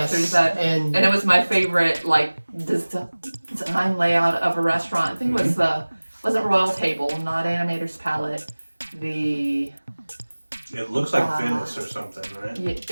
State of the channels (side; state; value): both; inverted; correlation -1.00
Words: And it was my favorite, design layout of a restaurant. I think it wasn't Royal Table, not Animator's Palette. It looks like Venice or something, right?